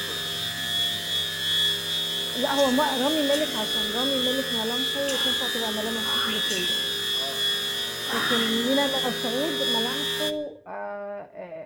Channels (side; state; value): both; identical; correlation 1.00